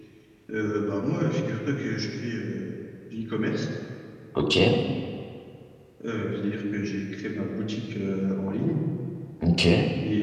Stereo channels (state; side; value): identical; both; correlation 1.00